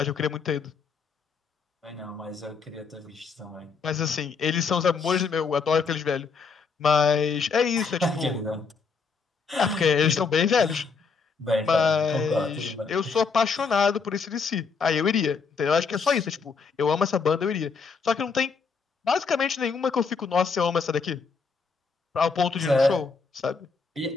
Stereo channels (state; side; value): quieter; right; 5.1 dB